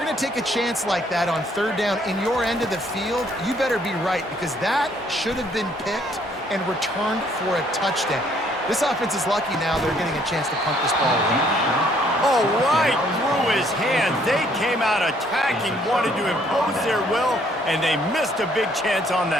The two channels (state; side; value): normal; both; correlation 0.65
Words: to take a chance like that on third down in your end of the field, you better be right, because that should have been picked and returned for a touchdown. This offense is lucky now they're getting a chance to punt this ball away. Oh, right through his hands. They came out attacking, wanted to impose their will, and they missed a big chance on